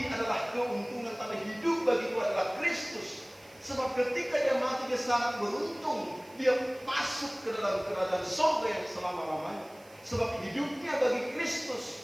adalah keuntungan, tapi hidup bagi itu adalah Kristus. Sebab ketika dia mati, dia sangat beruntung. Dia masuk ke dalam kerajaan surga yang selama-lamanya. Sebab hidupnya bagi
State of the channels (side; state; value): right; noise; hiss, 27 dB below the sound